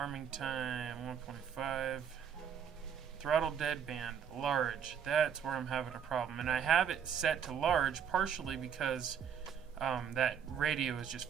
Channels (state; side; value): quieter; left; 8.0 dB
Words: time 1.5. Throttle deadband large. That's where I'm having a problem. And I have it set to large partially because that radio is just